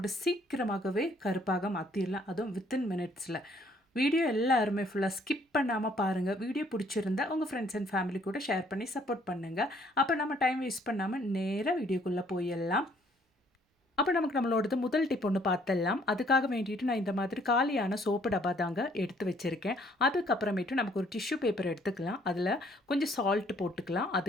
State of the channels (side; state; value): both; normal; correlation 0.63